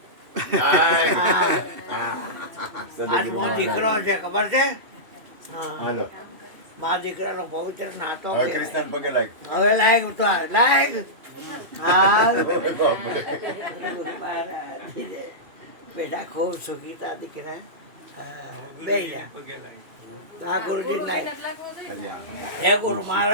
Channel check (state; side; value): late; left; 2.6 ms